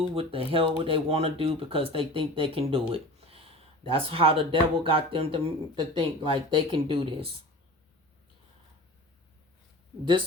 what the hell what they want to do because they think they can do it. That's how the devil got them to think like they can do this.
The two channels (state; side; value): normal; both; correlation 0.37